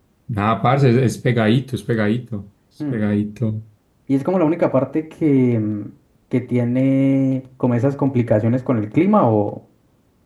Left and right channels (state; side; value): identical; both; correlation 1.00